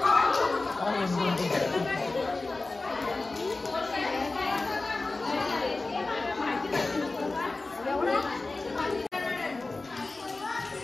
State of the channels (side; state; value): right; quieter; 3.4 dB